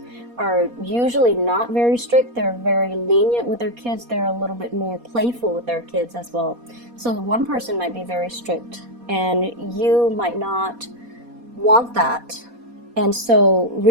are usually not very strict. They're very lenient with their kids. They're a little bit more playful with their kids as well. So one person might be very strict, and you might not want that. And so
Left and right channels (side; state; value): left; late; 4.2 ms